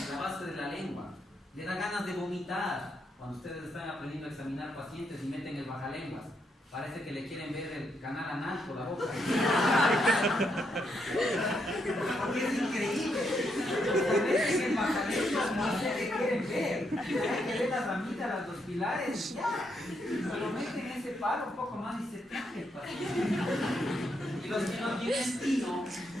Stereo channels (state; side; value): normal; both; correlation 0.78